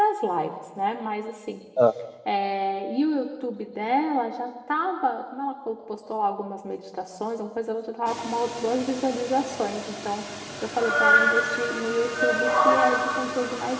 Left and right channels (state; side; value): identical; both; correlation 1.00